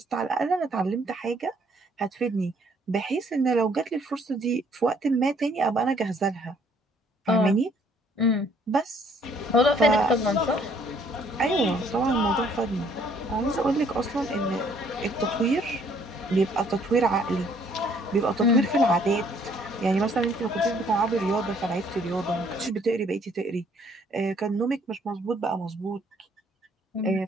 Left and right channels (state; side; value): normal; both; correlation 0.63